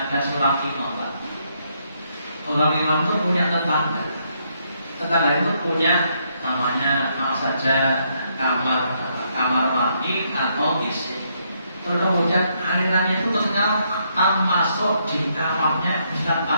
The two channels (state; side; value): inverted; both; correlation -0.75